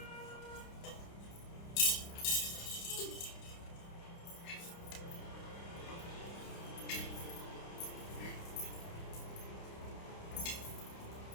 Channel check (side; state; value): right; late; 30 ms